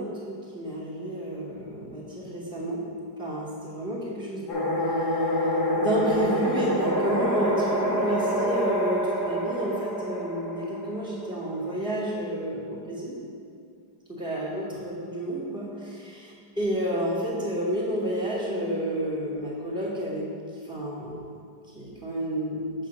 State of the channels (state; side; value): late; right; 4.9 ms